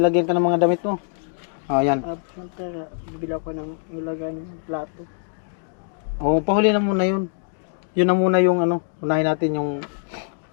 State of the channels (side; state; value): right; silent; digital silence